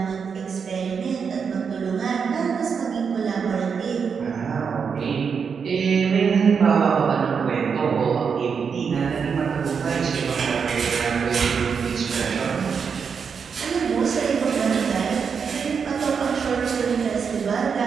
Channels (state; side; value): quieter; left; 6.2 dB